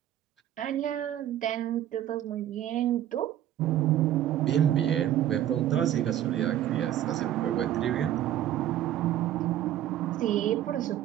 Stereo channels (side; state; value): left; quieter; 11.9 dB